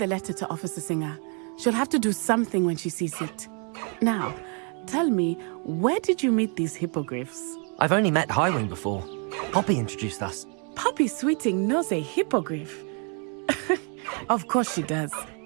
letter to Officer Singer. She'll have to do something when she sees it. Now, tell me, where did you meet these hippogriffs? I've only met Highwing before. Poppy introduced us. Poppy Sweeting knows a hippogriff. Of course she does.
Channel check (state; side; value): quieter; left; 37.6 dB